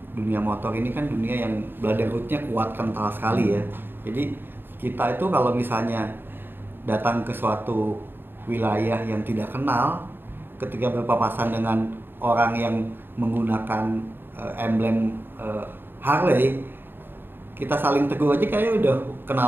dunia motor ini kan dunia yang brotherhood-nya kuat, kental sekali ya. Jadi kita itu kalau misalnya datang ke suatu wilayah yang tidak kenal, ketika berpapasan dengan orang yang menggunakan emblem Harley, kita saling tegur aja kayak udah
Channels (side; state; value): left; late; 0.10 ms